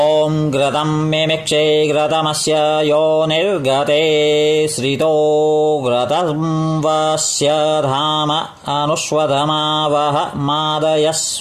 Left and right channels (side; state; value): both; identical; correlation 1.00